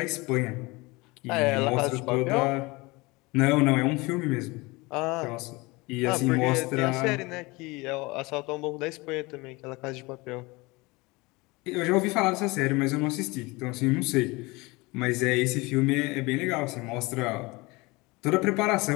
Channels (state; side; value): quieter; right; 24.0 dB